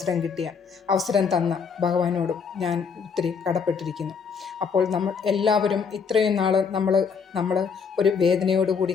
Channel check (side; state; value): right; quieter; 6.0 dB